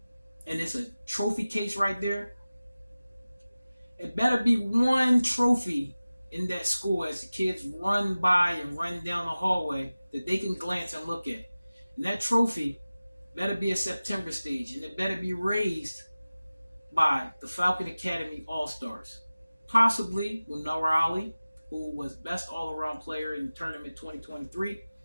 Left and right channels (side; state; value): both; inverted; correlation -0.97